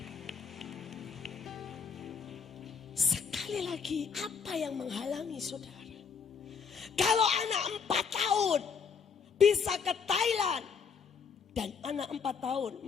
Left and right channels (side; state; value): right; quieter; 6.1 dB